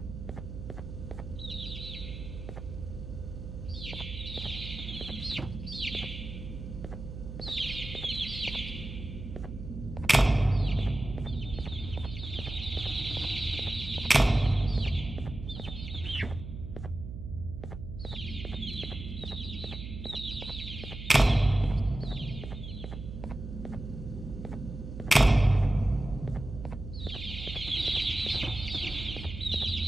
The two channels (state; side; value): noise; right; hum, 9 dB below the sound